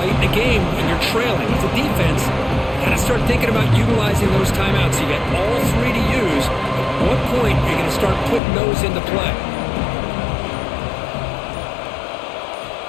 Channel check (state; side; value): drops out; right; at 8.4 s